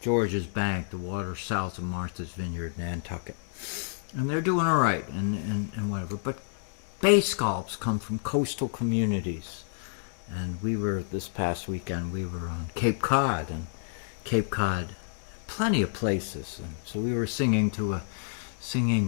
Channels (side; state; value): right; silent; digital silence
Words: George's Bank, the waters south of Martha's Vineyard, Nantucket. And they're doing all right, and whatever. But bay scallops come from coastal communities. And this past weekend, we were on Cape Cod, plenty of places. And so we were singing to the